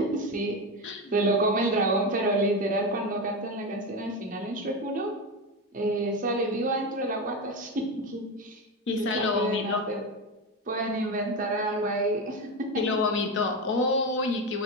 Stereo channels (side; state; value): both; normal; correlation 0.17